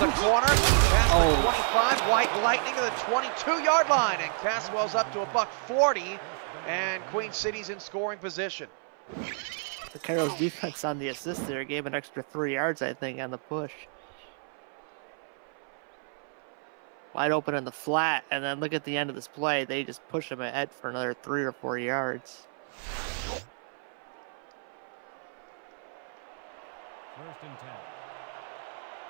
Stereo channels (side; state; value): left; silent; 58 dB below the other